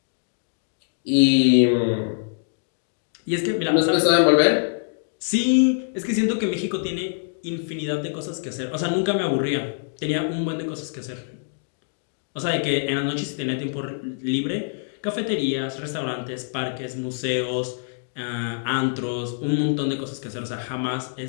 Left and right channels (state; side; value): silent; right; digital silence